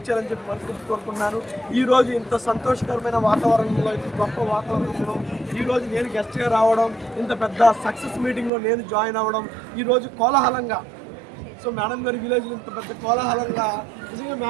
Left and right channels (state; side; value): drops out; left; at 8.5 s